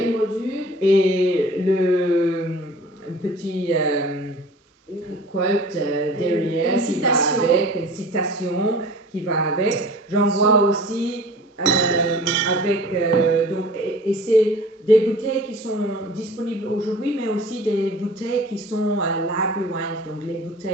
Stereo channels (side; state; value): both; normal; correlation 0.44